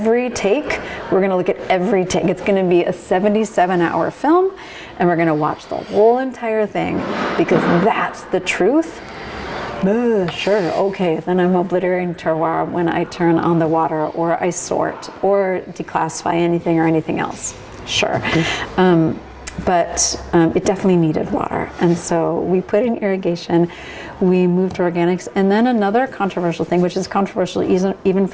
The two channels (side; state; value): both; identical; correlation 1.00